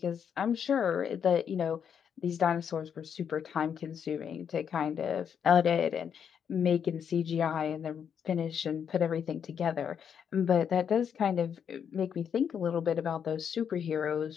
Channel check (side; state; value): right; quieter; 7.8 dB